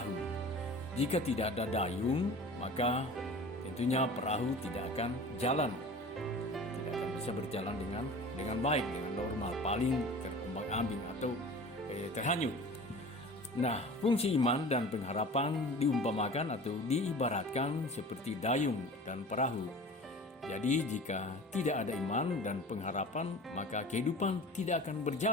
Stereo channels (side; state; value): both; normal; correlation 0.40